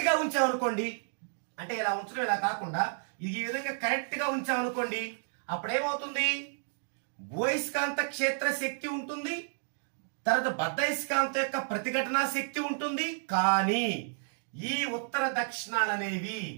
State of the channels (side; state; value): left; silent; digital silence